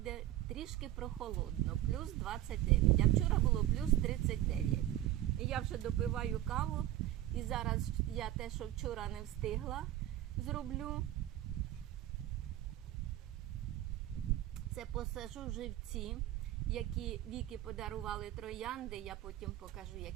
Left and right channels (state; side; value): quieter; left; 13.7 dB